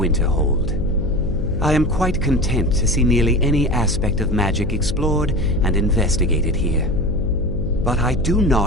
I am quite content to see nearly any aspect of magic explored and investigated here. But I do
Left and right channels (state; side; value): noise; left; hum, 5 dB below the sound